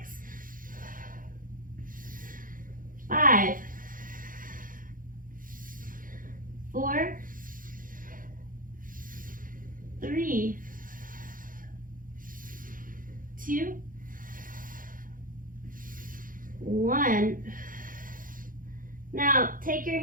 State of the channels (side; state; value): left; late; 0.40 ms